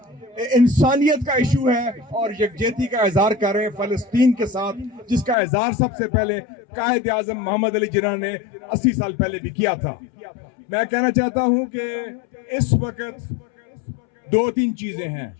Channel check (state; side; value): drops out; right; at 5.4 s